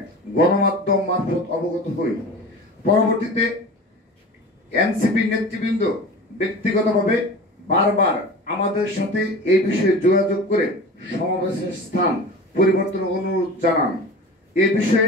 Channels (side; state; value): both; normal; correlation 0.35